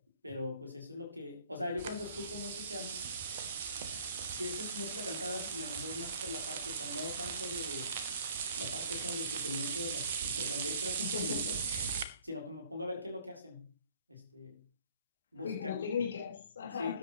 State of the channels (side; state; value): both; inverted; correlation -0.55